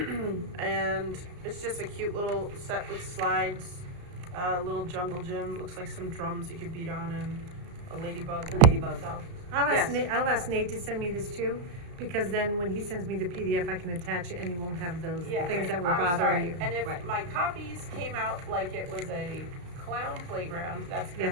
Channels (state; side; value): late; left; 34 ms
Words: And it's just a cute little set with slides, a little jungle gym, looks like some drums you could beat on and a ladybug. So, I'll Yes. ask Nate to send me this too. because then when he sends me the PDF, I can attach it and you won't have those Yeah, things right. that were I'm bothering sorry. you. And if Right. my copies came out like it was a clown playground, that's because